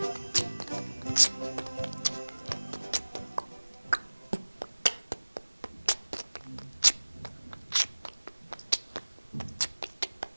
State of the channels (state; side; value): inverted; both; correlation -1.00